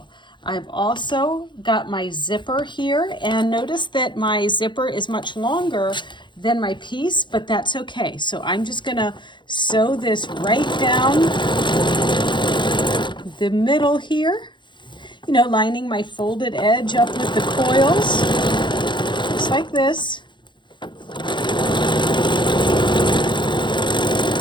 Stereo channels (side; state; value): right; late; 0.23 ms